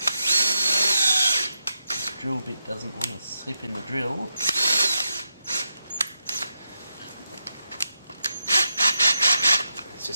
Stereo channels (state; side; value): inverted; both; correlation -0.85